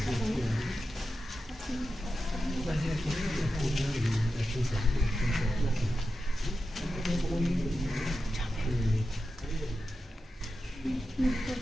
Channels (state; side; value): normal; both; correlation 0.91